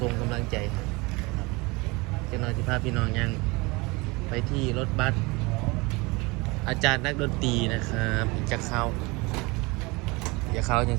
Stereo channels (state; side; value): quieter; left; 25.2 dB